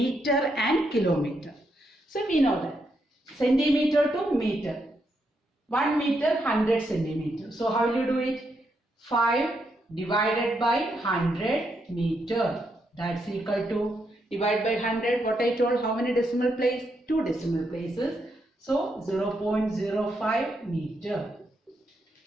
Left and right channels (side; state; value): both; normal; correlation 0.80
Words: and kilometer. So we know that centimeter to meter. 1 meter, 100 centimeter. So how will you do it? 5 divided by 100 meter. That's equal to, divide by 100, what I told, how many decimal places? 2 decimal places. So 0.05 meter.